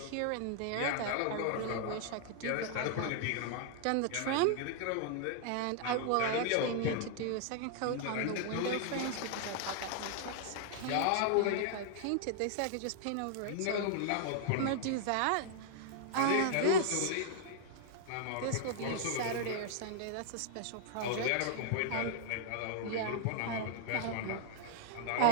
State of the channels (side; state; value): both; different; correlation -0.01